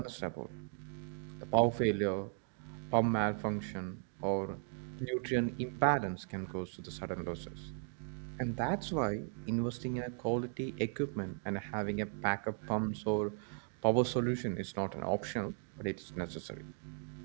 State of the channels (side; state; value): left; silent; 53 dB below the other